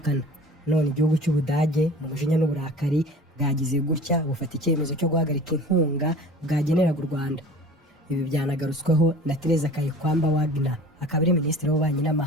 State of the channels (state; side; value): normal; both; correlation 0.42